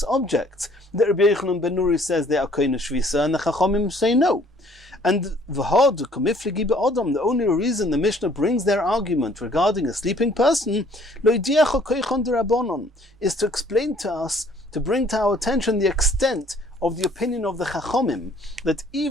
objects, that Rabbi Yochanan ben Nuri says they are koina shvisa, and the Chachomim say no. And v'hod komiflegi be'odam, the only reason the Mishnah brings their argument regarding a sleeping person, lo yidiacha koichon derabonon, is to explain to us, to bring to our attention the extent of the opinion of the Chachomim, that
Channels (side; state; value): both; normal; correlation 0.58